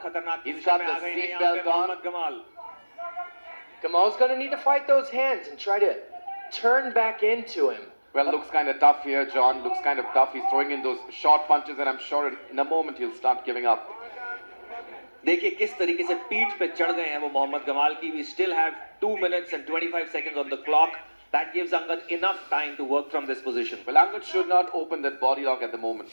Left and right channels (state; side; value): inverted; both; correlation -1.00